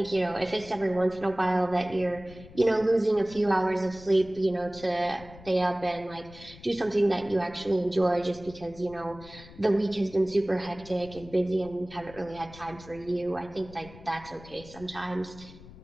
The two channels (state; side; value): noise; left; rumble, 19 dB below the sound